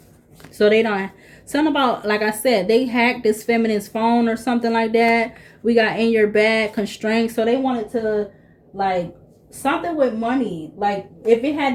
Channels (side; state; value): both; identical; correlation 1.00